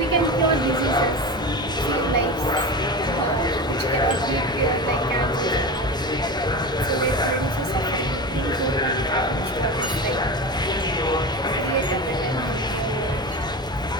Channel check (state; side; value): normal; both; correlation 0.26